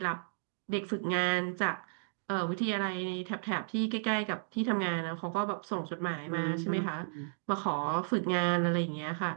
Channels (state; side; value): silent; left; digital silence